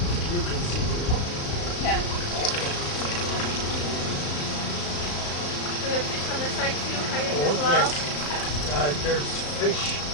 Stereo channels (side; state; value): right; late; 34 ms